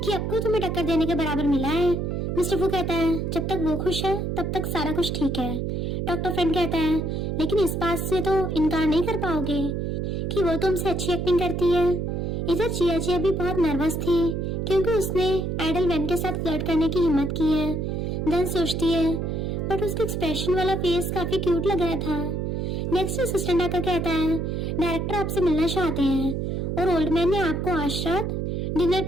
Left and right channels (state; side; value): noise; right; hum, 1 dB below the sound